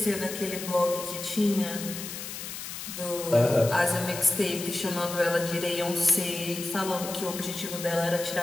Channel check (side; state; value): left; noise; hiss, 8 dB below the sound